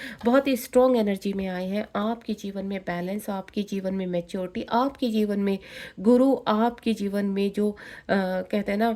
बहुत ही स्ट्रॉन्ग एनर्जी में आए हैं। आपके जीवन में बैलेंस, आपके जीवन में मैच्योरिटी, आपके जीवन में गुरु, आपके जीवन में जो कहते हैं ना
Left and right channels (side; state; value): both; identical; correlation 1.00